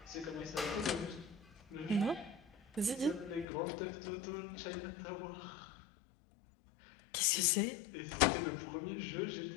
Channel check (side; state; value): right; drops out; at 3.5 s